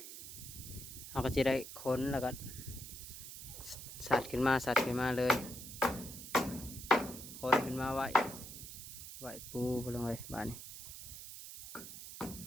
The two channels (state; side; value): noise; right; hiss, 11 dB below the sound